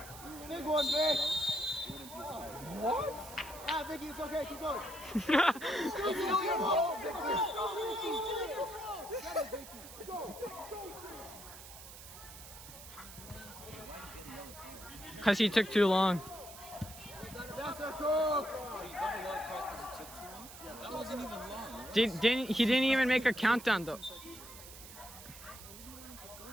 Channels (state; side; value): noise; right; hiss, 15 dB below the sound